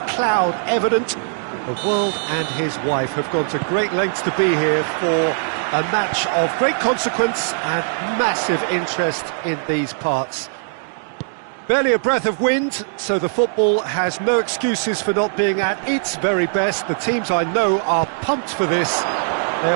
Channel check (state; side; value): silent; left; digital silence